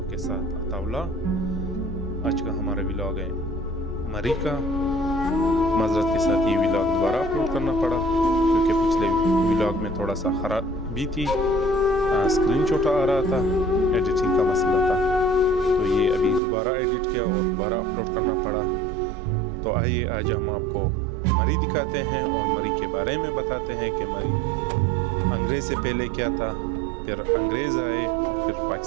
के साथ अताउल्ला। आज का हमारा व्लॉग है मरी का। माजरत के साथ ये व्लॉग दोबारा अपलोड करना पड़ा क्योंकि पिछले व्लॉग में थोड़ा सा खराबी थी, स्क्रीन छोटा आ रहा था, एडिटिंग का मसला था, तो ये अभी दोबारा एडिट किया और दोबारा अपलोड करना पड़ा। तो आइए आज हम आपको मरी दिखाते हैं और मरी के बारे में बताते हैं कि मरी अंग्रेज़ से पहले क्या था, फिर अंग्रेज़ आए, फिर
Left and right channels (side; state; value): left; drops out; at 16.4 s